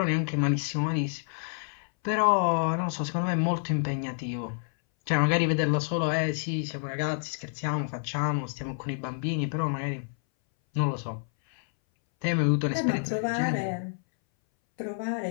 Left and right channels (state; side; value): silent; right; 59 dB below the other